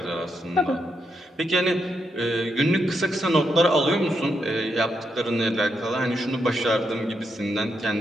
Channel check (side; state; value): both; normal; correlation 0.82